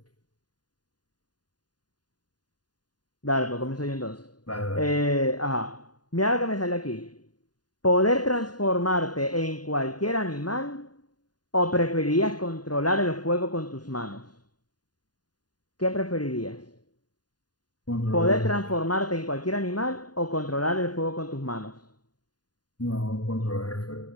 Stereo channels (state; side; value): late; right; 0.70 ms